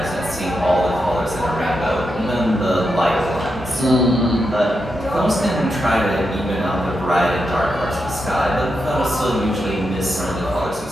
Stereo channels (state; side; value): normal; both; correlation 0.86